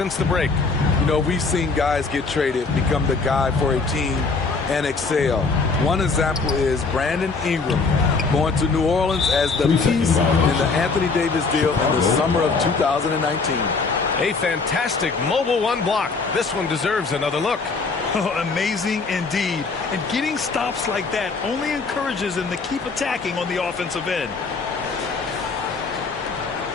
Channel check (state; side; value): quieter; right; 4.3 dB